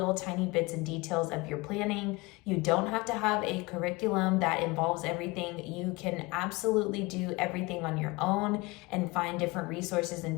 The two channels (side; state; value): right; quieter; 23.7 dB